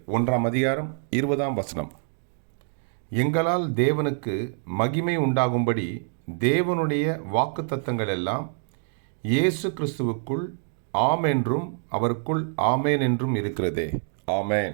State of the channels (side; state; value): left; silent; 56 dB below the other